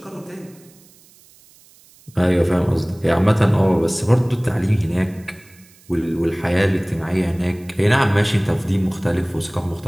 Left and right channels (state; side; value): noise; right; hiss, 27 dB below the sound